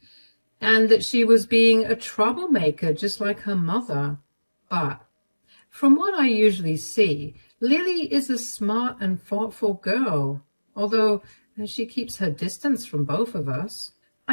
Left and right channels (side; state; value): both; inverted; correlation -1.00